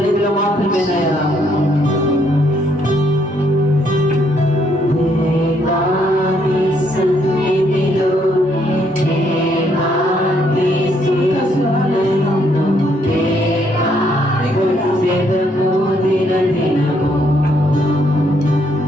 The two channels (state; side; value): normal; both; correlation 0.71